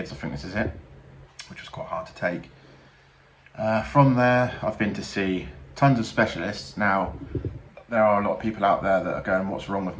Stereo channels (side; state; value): both; identical; correlation 1.00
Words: I think this is it, which was quite hard to take. From there, I've been to see tons of specialists. Now, there are a lot of people out there that are going, what's wrong with